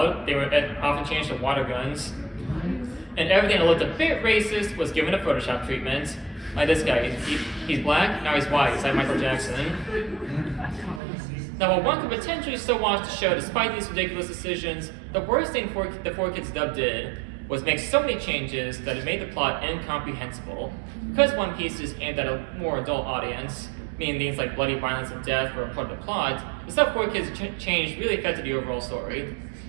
they were often changed to water guns, and everything that looked a bit racist was given a Photoshop treatment. Like this guy, he's black, now he's white, it's like Michael Jackson. Now, while one could potentially still watch the show despite these ridiculous decisions, the worst thing the 4Kids dub did was make so many changes that it made the plot incomprehensible. Because One Piece is aimed at a more adult audience, meaning things like bloody violence and death were a part of the plot, the stuff 4Kids changed really affected the overall story.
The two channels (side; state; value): left; drops out; at 11.0 s